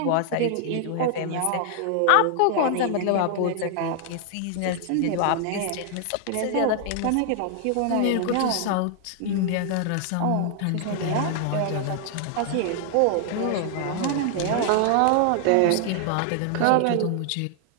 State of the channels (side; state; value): both; different; correlation 0.00